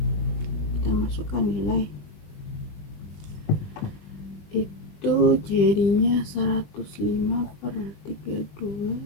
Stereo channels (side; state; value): right; late; 20 ms